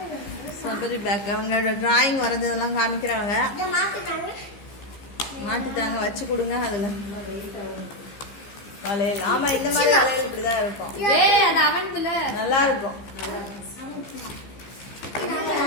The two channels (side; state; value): right; late; 15 ms